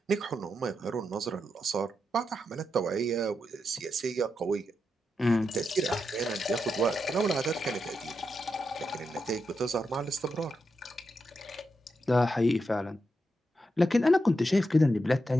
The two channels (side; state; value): both; normal; correlation 0.86